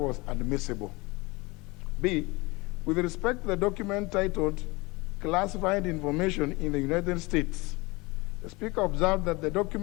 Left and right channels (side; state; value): right; quieter; 24.2 dB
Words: admissible. B, with respect to the document titled Classified Information in the United States, the Speaker observed that the